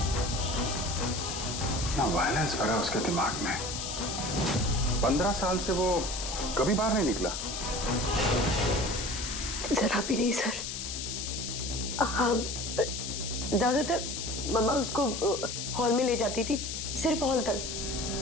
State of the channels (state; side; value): noise; left; hiss, 5 dB below the sound